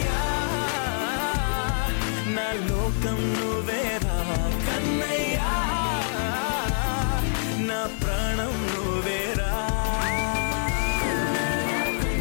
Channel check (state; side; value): silent; right; 61 dB below the other